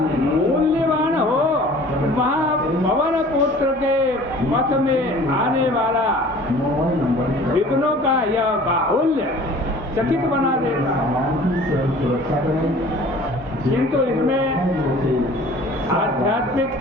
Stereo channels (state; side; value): normal; both; correlation 0.47